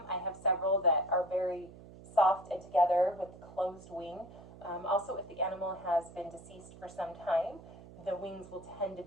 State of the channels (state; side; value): noise; right; hum, 18 dB below the sound